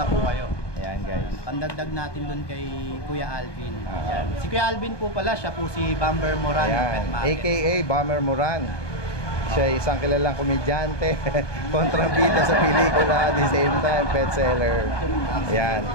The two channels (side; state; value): right; late; 1.2 ms